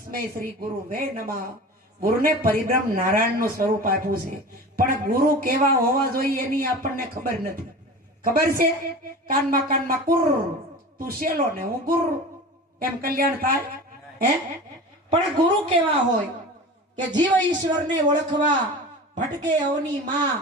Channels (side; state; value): both; normal; correlation 0.34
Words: શ્રી ગુરુ વે નમઃ. ગુરુને પરિબ્રહ્મ નારાયણનું સ્વરૂપ આપ્યું છે, પણ ગુરુ કેવા હોવા જોઈએ એની આપણને ખબર નથી. ખબર છે? કાનમાં કુર, તું શેલો ને હું ગુરુ, એમ કલ્યાણ થાય? હે પણ ગુરુ કેવા હોય કે જીવ ઈશ્વરને ઓળખવા ભટકે અવની માં,